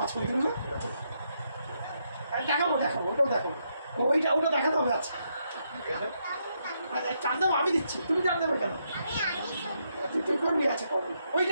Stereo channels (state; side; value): inverted; both; correlation -0.78